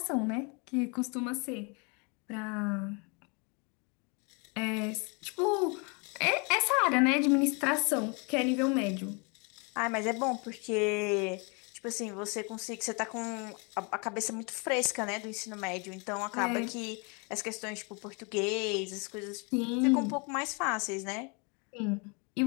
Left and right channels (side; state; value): right; quieter; 32.9 dB